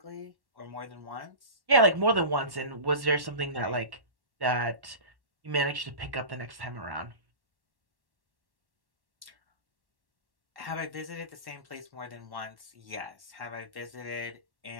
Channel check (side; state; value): left; late; 1.1 ms